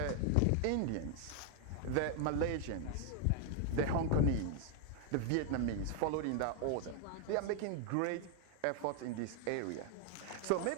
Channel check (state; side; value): different; both; correlation 0.00